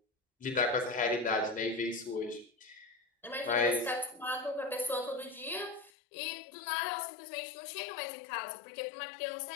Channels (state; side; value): drops out; right; at 5.9 s